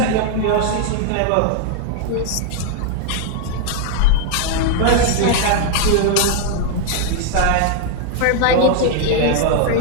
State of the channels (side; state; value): both; different; correlation 0.00